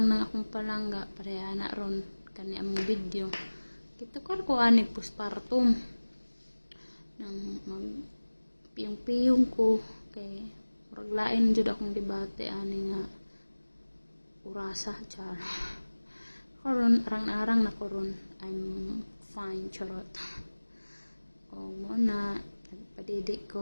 ng akong palangga, pareha na ron, kani among video. Kitukar ko anig postpartum. Nang magpiyong-piyong ko, kay muraglain jud akong debate, ani nga, urasa, char. Karon, arang-arang na koron, I'm fine, charot. O muna, nagpadidik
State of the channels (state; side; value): inverted; both; correlation -1.00